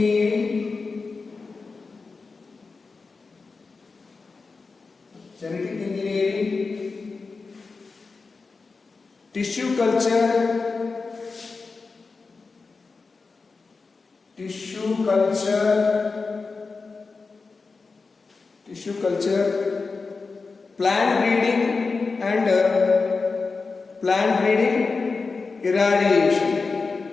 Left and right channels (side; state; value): right; quieter; 4.3 dB